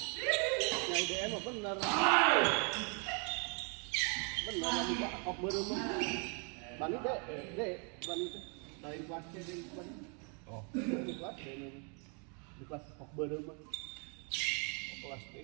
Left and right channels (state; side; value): quieter; left; 37.2 dB